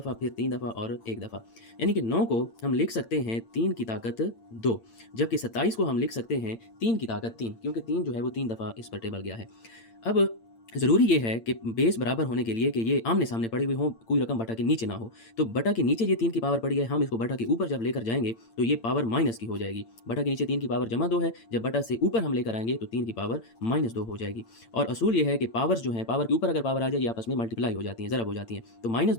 फिर 3 दफ़ा और 1 दफ़ा। यानी कि 9 को हम लिख सकते हैं 3 की ताकत 2, जबकि 27 को हम लिख सकते हैं 3 की ताकत 3, क्योंकि 3 जो है वो 3 दफ़ा इस पर टेबल गया है। अब ज़रूरी ये है कि बेस बराबर होने के लिए कि ये आमने-सामने पड़ी हुई हों, कोई रकम बटा के नीचे ना हो। तो बटा के नीचे ये 3 की पावर पड़ी है, हम इसको बटा के ऊपर जब लेकर जाएँगे तो ये पावर माइनस की हो जाएगी। बटा के नीचे 3 की पावर जमा 2 है, जब बटा से ऊपर हम लेकर आएँगे तो 3 की पावर -2 हो जाएगी। और असूल ये है कि पावर्स जो हैं, पावर के ऊपर अगर पावर आ जाए ये आपस में मल्टीप्लाई हो जाती हैं, ज़रब हो जाती हैं। तो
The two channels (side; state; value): right; late; 8.8 ms